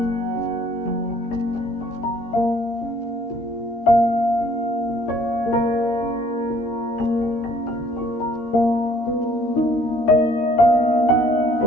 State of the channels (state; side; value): late; right; 13 ms